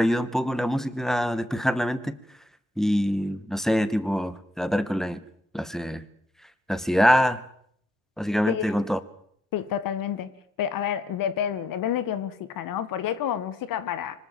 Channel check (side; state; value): both; normal; correlation 0.74